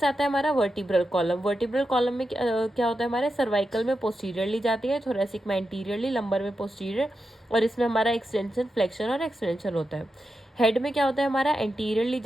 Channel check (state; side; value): normal; both; correlation 0.88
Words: आता है हमारा वर्टिब्रल कॉलम। वर्टिब्रल कॉलम में क्या होता है, हमारे सर्वाइकल में पोस्टीरियरली जाती है, थोरेसिक में एंटीरियरली, लंबर में पोस्टीरियर और इसमें हमारा एक्सटेंशन, फ्लेक्शन और एक्सटेंशन होता है। हेड में क्या होता है, हमारा एंटीरियरली